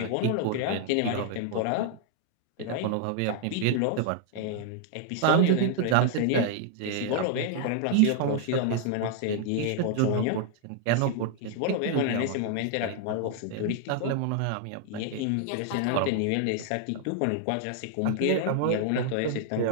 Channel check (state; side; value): different; both; correlation 0.00